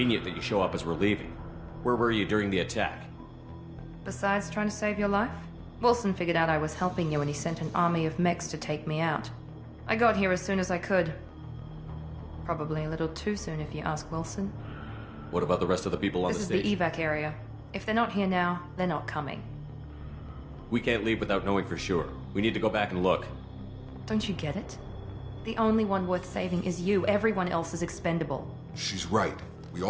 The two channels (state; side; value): identical; both; correlation 1.00